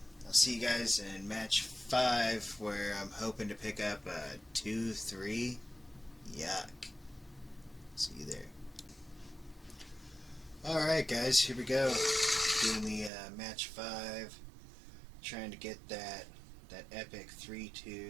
I'll see you guys in match 5, where I'm hoping to pick up a 2-3. Yuck. See you there. Alright guys, here we go. Doing the match 5. Trying to get that epic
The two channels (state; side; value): drops out; left; at 13.1 s